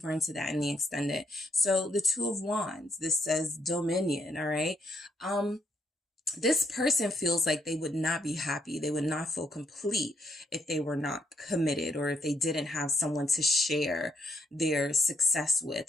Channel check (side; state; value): both; normal; correlation 0.75